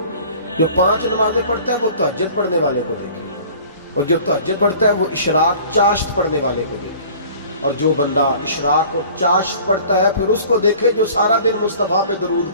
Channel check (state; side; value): inverted; both; correlation -0.47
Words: جو 5 نمازیں پڑھتا ہے وہ تہجد پڑھنے والے کو دیکھے، اور جو تہجد پڑھتا ہے وہ اشراق چاشت پڑھنے والے کو دیکھے، اور جو بندہ اشراق اور چاشت پڑھتا ہے پھر اس کو دیکھے جو سارا دن مصطفیٰ پہ درود